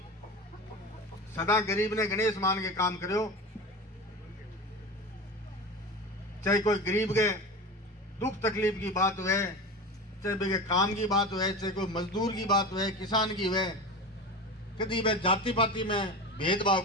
सदा गरीब ने गणेश मान के काम करो, चाहे कोई गरीब के दुख तकलीफ की बात हुए, चाहे बेगे काम की बात हुए, चाहे कोई मजदूर की बात हुए, किसान की हुए, कभी वे जाति पाति में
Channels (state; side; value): normal; both; correlation 0.28